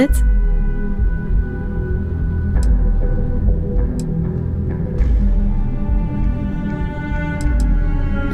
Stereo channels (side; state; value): both; identical; correlation 1.00